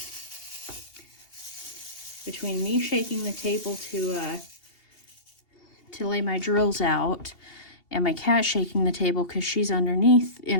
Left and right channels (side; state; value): right; late; 2.8 ms